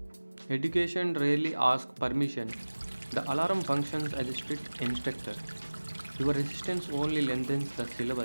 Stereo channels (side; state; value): both; inverted; correlation -1.00